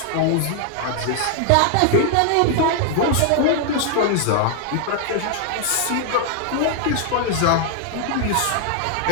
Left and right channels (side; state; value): both; different; correlation 0.00